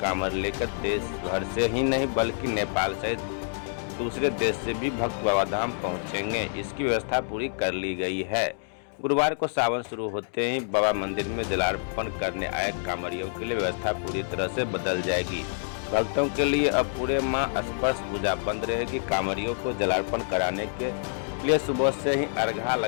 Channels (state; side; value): silent; right; digital silence